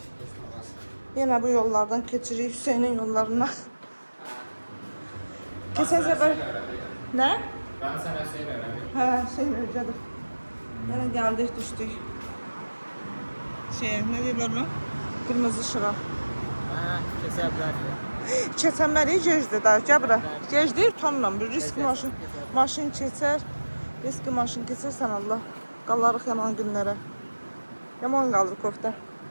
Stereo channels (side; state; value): both; inverted; correlation -1.00